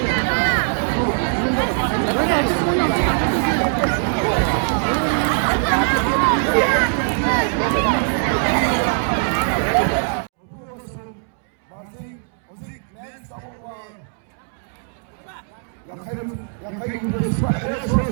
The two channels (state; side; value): silent; left; 63 dB below the other